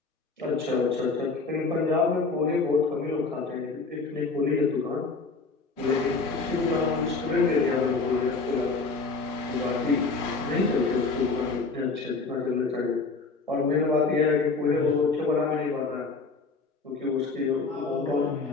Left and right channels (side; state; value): right; quieter; 4.1 dB